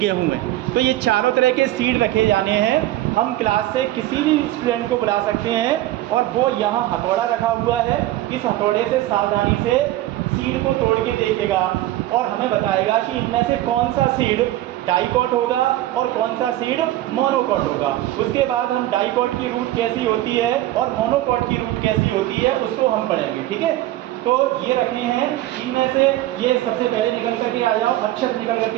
है। तो ये चारों तरह के सीड रखे जाने हैं। हम क्लास से किसी भी स्टूडेंट को बुला सकते हैं और वो यहाँ हथौड़ा रखा हुआ है, इस हथौड़े से सावधानी से सीड को तोड़ के देखेगा और हमें बताएगा कि इनमें से कौन सा सीड डाइकॉट होगा और कौन सा सीड मोनोकॉट होगा। उसके बाद हम डाइकॉट की रूट कैसी होती है और मोनोकॉट की रूट कैसी होती है उसको हम पढ़ेंगे, ठीक है। तो ये रखे हैं, इनमें से ये सबसे पहले निकल करके आ जाओ, अक्षर निकल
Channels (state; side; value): quieter; left; 15.2 dB